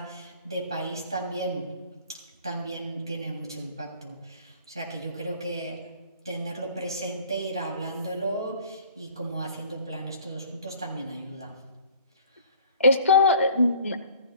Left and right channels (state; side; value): inverted; both; correlation -0.50